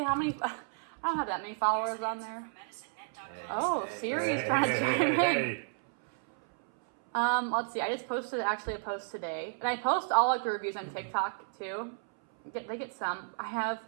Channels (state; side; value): silent; left; 56 dB below the other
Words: how many. I don't have that many followers on there. Oh, Siri's trying to chime in. Hey. Let's see. I just posted actually a post today, and I post all like the reviews on TikTok too. They get some. I have